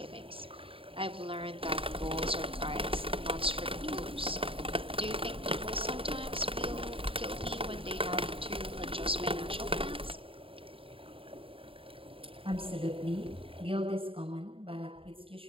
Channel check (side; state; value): left; late; 0.27 ms